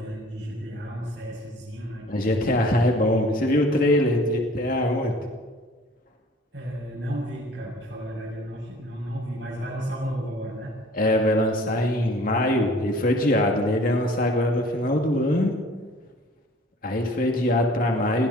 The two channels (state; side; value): normal; both; correlation 0.50